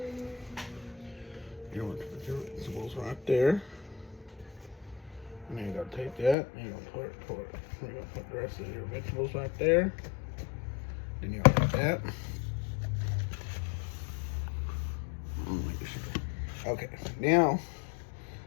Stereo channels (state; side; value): drops out; right; at 6.4 s